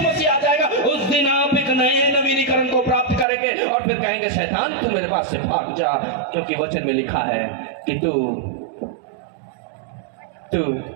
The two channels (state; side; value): drops out; left; at 3.2 s